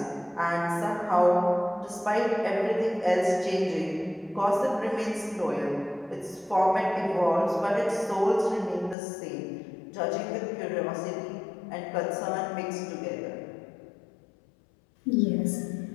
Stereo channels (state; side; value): drops out; right; at 9.0 s